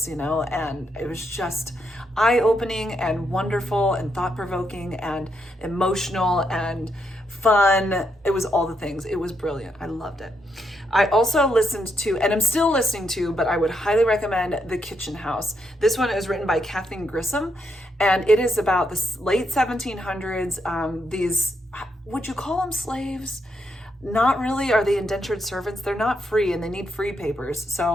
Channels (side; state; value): both; normal; correlation 0.79